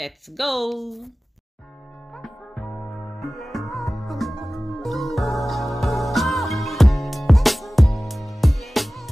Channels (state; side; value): normal; both; correlation 0.97